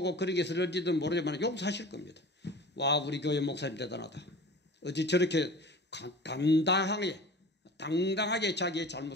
그러게 쓰러지든 모르지만 용서하실 겁니다. 와, 우리 교회 목사님 대단하다. 어찌 저렇게 당당하게 자기의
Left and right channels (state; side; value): normal; both; correlation 0.39